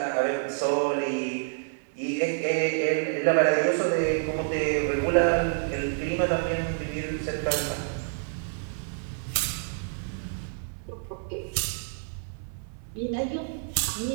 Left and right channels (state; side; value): silent; left; 58 dB below the other